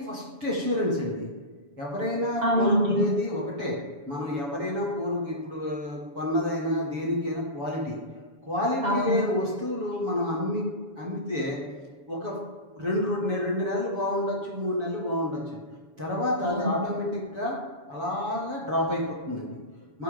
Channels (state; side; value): late; left; 7.1 ms